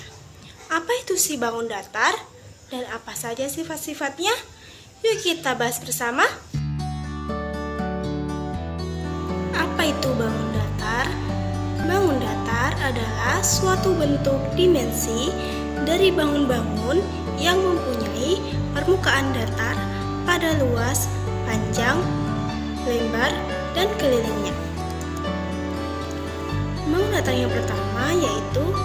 Apa itu si bangun datar dan apa saja sifat-sifatnya? Yuk kita bahas bersama. Apa itu bangun datar? Bangun datar adalah suatu bentuk dimensi dari bangun-bangun yang mempunyai permukaan datar pada luas, panjang, lebar, dan kelilingnya. Bangun datar yang pertama yaitu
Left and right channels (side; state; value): both; identical; correlation 1.00